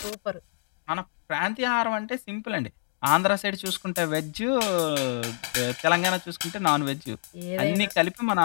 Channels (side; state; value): right; silent; digital silence